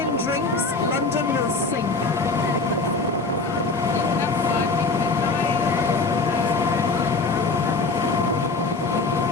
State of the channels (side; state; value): right; quieter; 3.8 dB